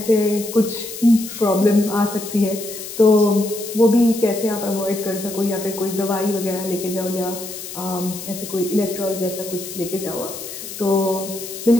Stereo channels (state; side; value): noise; left; hiss, 10 dB below the sound